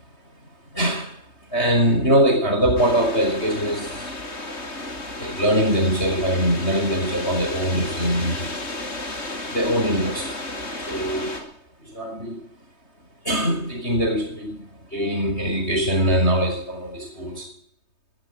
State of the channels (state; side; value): late; right; 3.2 ms